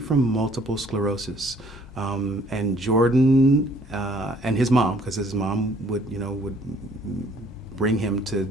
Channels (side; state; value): both; normal; correlation 0.60